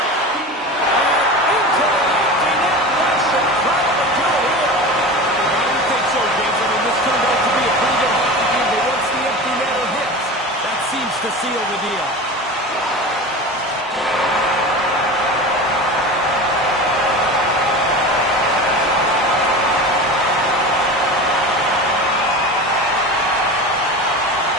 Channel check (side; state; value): both; normal; correlation 0.30